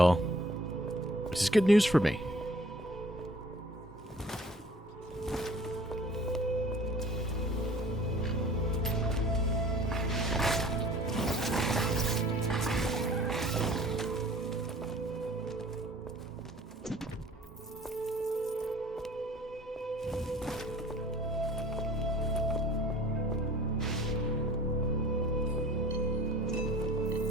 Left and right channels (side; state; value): both; normal; correlation 0.50